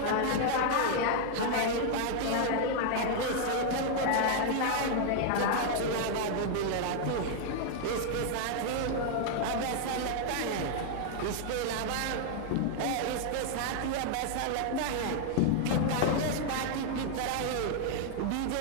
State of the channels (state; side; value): different; both; correlation 0.00